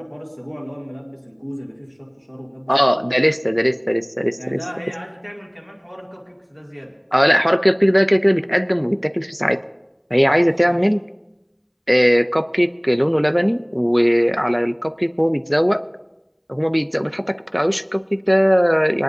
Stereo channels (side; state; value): both; identical; correlation 1.00